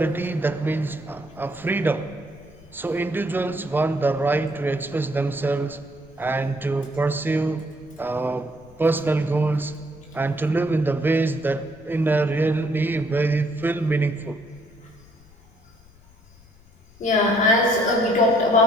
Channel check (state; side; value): noise; left; rumble, 26 dB below the sound